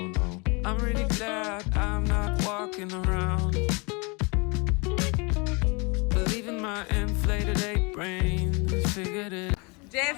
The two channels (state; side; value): quieter; right; 29.9 dB